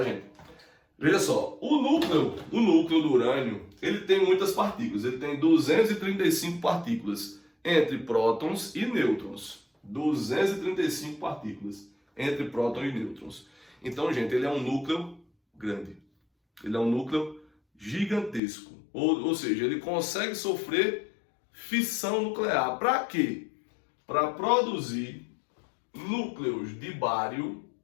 gente? Veja só, o núcleo do urânio, ele tem muitas partículas, ele tem 235 partículas entre prótons e nêutrons. 235 partículas entre prótons e nêutrons. Então, gente, ele é um núcleo grande. Ele é um núcleo gigantesco. Ou seja, ele consegue sofrer fissão nuclear. Para quê? Para produzir núcleos de bário.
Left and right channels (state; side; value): drops out; right; at 18.4 s